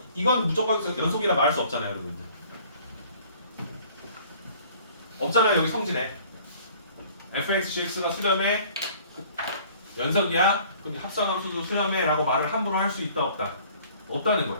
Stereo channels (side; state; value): both; inverted; correlation -0.53